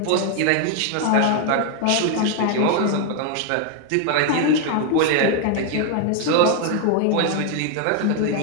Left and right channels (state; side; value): different; both; correlation 0.01